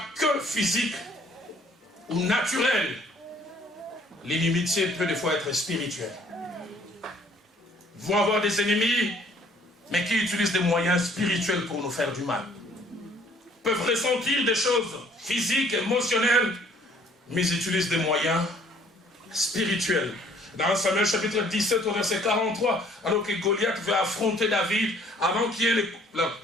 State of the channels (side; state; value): both; normal; correlation 0.59